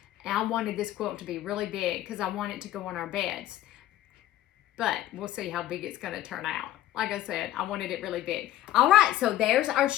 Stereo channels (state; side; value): quieter; right; 13.8 dB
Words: And I wanted this quilt to be really big because I want it to go on our beds. But we'll see how big it's going to turn out. Like I said, I wanted it really big. All right, so there's our